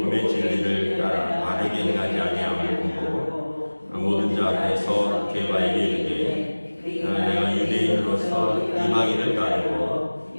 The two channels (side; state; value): both; inverted; correlation -1.00